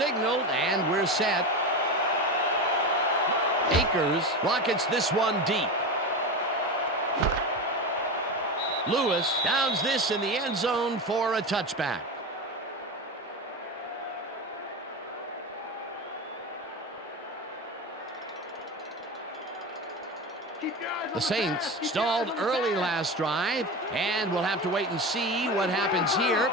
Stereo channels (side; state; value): both; normal; correlation 0.22